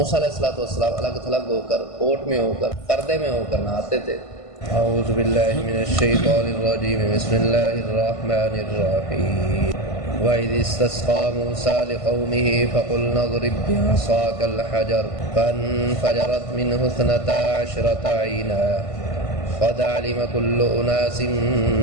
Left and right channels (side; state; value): right; late; 1.5 ms